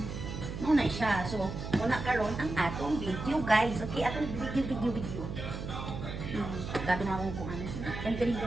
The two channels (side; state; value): right; noise; hum, 6 dB below the sound